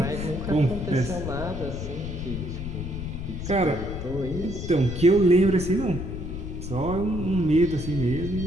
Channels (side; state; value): left; noise; rumble, 6 dB below the sound